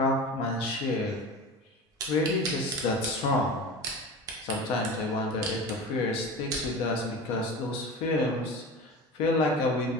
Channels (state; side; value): normal; both; correlation 0.32